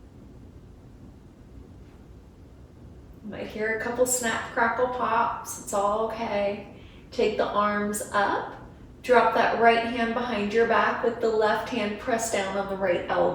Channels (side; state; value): both; identical; correlation 1.00